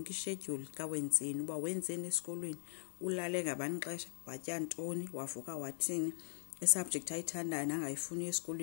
ischedule kaWenzeni uba wenzeni esikolweni ulale ngabanixesha watya ntoni wavuka wathini isubject ayithandayo nangayifuni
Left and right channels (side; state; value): right; silent; 51 dB below the other